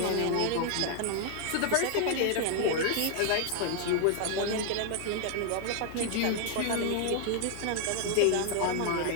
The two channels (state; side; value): different; both; correlation 0.00